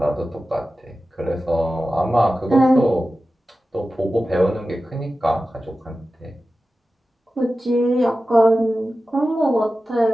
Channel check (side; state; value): both; normal; correlation 0.94